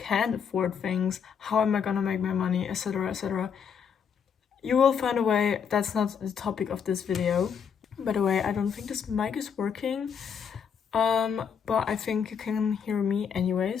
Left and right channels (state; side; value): quieter; right; 7.1 dB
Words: afford things. How am I gonna make my money, etc., etc. You will find a way. That's not the topic of this video. By the way, I don't think this mic is working. But I think you can hear me